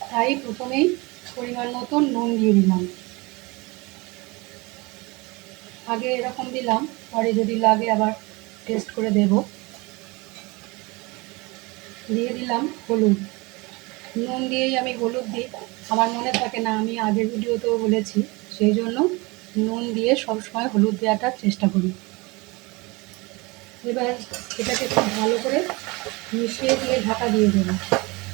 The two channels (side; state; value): left; quieter; 25.2 dB